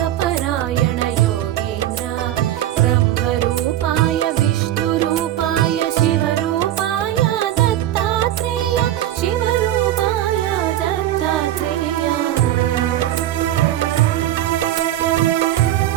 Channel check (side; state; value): left; quieter; 12.8 dB